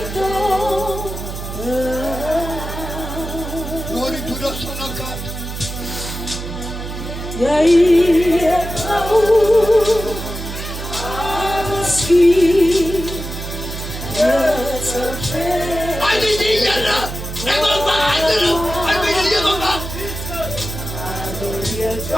Glory to the Son of God.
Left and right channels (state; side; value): noise; right; hum, 8 dB below the sound